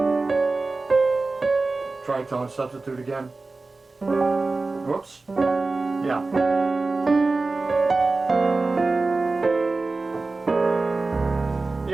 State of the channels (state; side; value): quieter; left; 3.6 dB